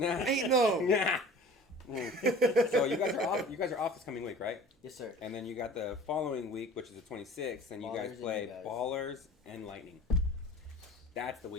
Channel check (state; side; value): normal; both; correlation 0.43